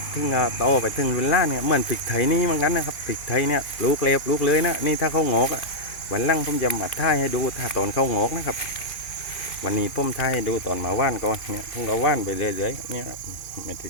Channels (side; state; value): right; late; 2.7 ms